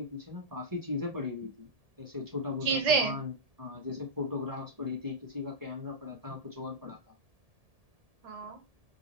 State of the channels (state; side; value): late; left; 1.7 ms